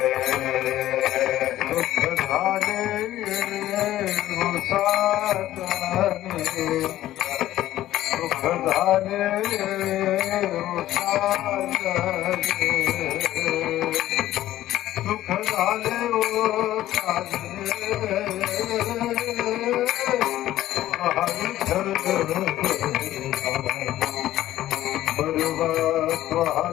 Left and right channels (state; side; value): quieter; right; 14.0 dB